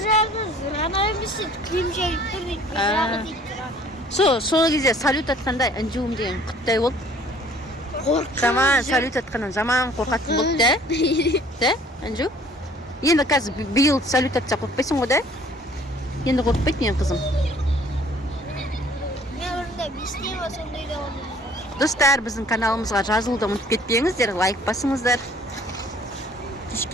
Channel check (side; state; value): both; normal; correlation 0.55